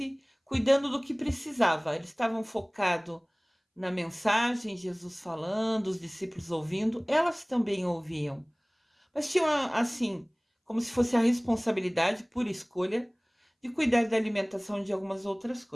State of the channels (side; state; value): both; identical; correlation 1.00